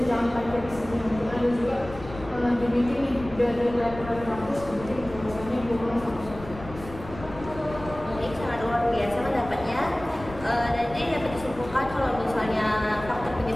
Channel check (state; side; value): noise; left; rumble, 14 dB below the sound